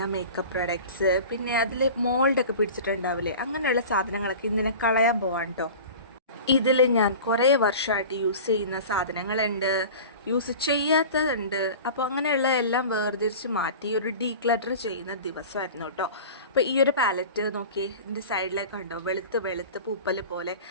makeup products പിന്നെ അതിൽ മോൾഡൊക്കെ പിടിച്ചിട്ടുണ്ടാവില്ലേ, അങ്ങനെയുള്ള സാധനങ്ങളൊക്കെ ഇന്നിനെ കളയാൻ പോവാണ് കേട്ടോ. ഇതിൽ ഞാൻ കുറേ വർഷമായിട്ട് യൂസ് ചെയ്യുന്ന സാധനങ്ങളുണ്ട്, യൂസ് ചെയ്യാത്തതുണ്ട്. അപ്പോൾ അങ്ങനെയുള്ള എല്ലാം വേർതിരിച്ച് മാറ്റി ഒരു ഡീക്ലട്ടർ ചെയ്യുന്ന ദിവസമായിരുന്നു കേട്ടോ. അപ്പോൾ ഈ ഒരു പാലറ്റ് നോക്കി, ഇതിൻ്റെ സൈഡിലേക്ക് കണ്ടോ, വെളുത്ത് വെളുത്ത് പൂപ്പൽ പോലെ.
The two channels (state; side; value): inverted; both; correlation -0.37